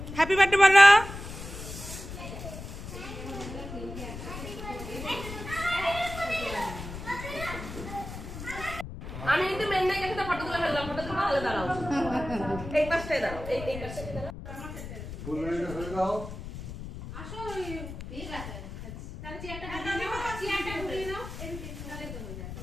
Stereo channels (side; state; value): left; noise; rumble, 10 dB below the sound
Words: হ্যাপি বার্থডে বলো। আমি কিন্তু মেন্নাই একটা ফটো তুলে ফেললাম, ফটো তুলে ভালো দাঁড়াও, এই পাশটায় দাঁড়াও, এই পাশটায় দাঁড়াও। ফুলগুলো ধরে দাও। আসো, ঠিক আছে, তাহলে চেয়ারটা ঘুরিয়ে নাও, তাহলে তো হয়ে যাবে।